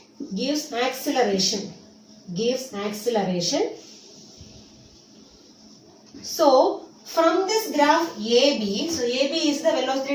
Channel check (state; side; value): identical; both; correlation 1.00